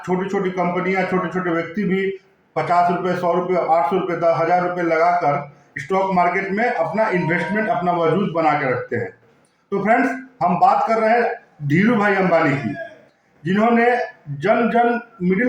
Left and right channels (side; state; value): both; identical; correlation 1.00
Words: छोटी छोटी कंपनियां, छोटे छोटे व्यक्ति भी 50 रुपये, 100 रुपये, 800 रुपये, 10,000 रुपये लगाकर स्टॉक मार्केट में अपना इन्वेस्टमेंट, अपना वजूद बना के रखते हैं। तो फ्रेंड्स, हम बात कर रहे हैं धीरू भाई अंबानी की, जिन्होंने जन